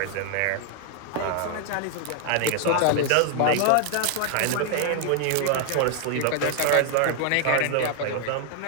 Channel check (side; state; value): both; different; correlation 0.00